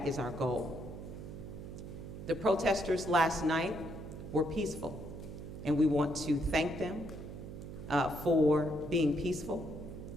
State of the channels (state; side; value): noise; right; hum, 10 dB below the sound